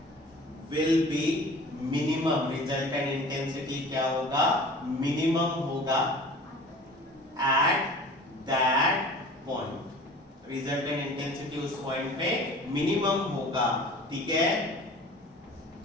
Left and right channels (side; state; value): both; normal; correlation 0.43